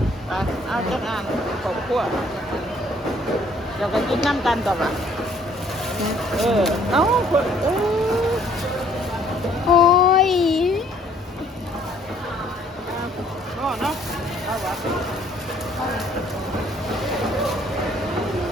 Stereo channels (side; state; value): both; normal; correlation 0.61